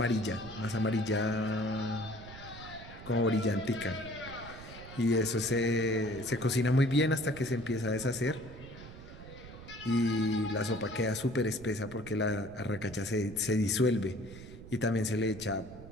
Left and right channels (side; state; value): right; noise; rumble, 15 dB below the sound